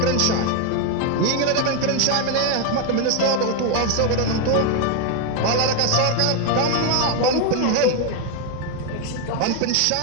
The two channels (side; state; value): both; different; correlation 0.01